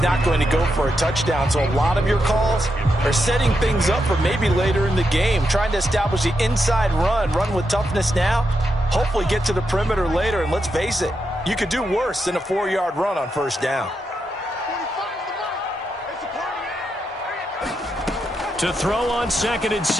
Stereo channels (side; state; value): both; normal; correlation 0.84